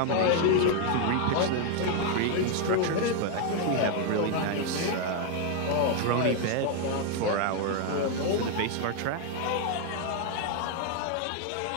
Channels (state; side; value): different; both; correlation 0.01